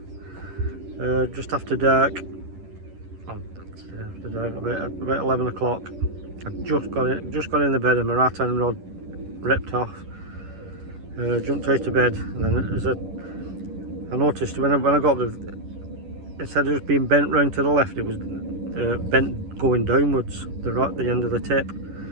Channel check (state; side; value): late; left; 11 ms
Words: Just after dark. About 11 o'clock. I just got in the bed and my right hand rod ripped off. Jumped out of bed, and then I noticed when I got there, instead of just being bent round to the left, it was bent going downwards, the end of the tip.